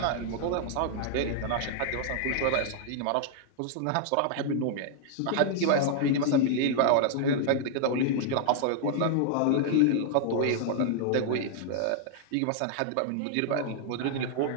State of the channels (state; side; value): different; both; correlation -0.01